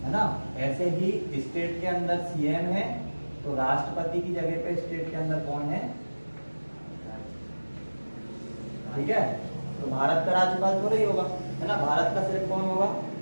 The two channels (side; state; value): both; inverted; correlation -1.00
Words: है ना। ऐसे ही स्टेट के अंदर सीएम है, तो राष्ट्रपति की जगह पे स्टेट के अंदर कौन है? ठीक है, तो भारत का राज्यपाल तो नहीं होगा है ना। भारत का सिर्फ कौन होगा?